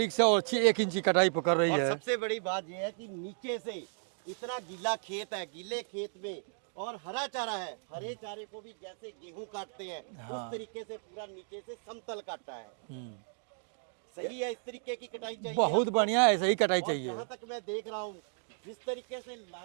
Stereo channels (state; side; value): silent; left; digital silence